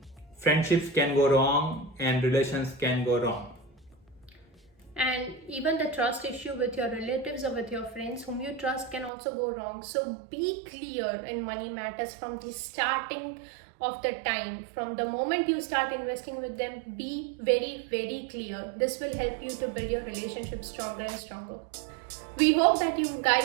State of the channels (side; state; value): left; drops out; at 9.1 s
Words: friendships can go wrong and relations can go wrong. And even the trust issue with your relatives or with your friends whom you trust can also go wrong. So be clear in money matters from the starting of the time. From the moment you start investing with them, be very, very clear. This will help you to build your relationship stronger and stronger. We hope that you